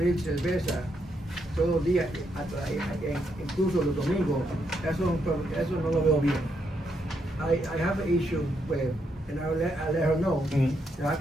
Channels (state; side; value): normal; both; correlation 0.78